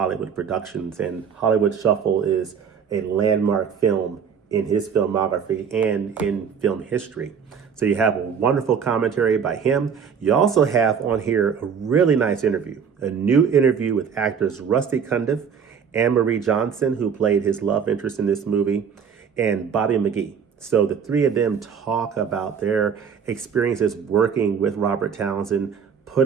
productions. And Hollywood Shuffle is a landmark film in his filmography and in film history. So you have a wonderful commentary by him. You also have on here a really nice interview, a new interview with actors Rusty Cundiff, Anne-Marie Johnson, who played his love interest in this movie, and Bobby McGee. So the three of them talk about their experiences working with Robert Townsend,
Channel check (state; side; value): quieter; left; 6.9 dB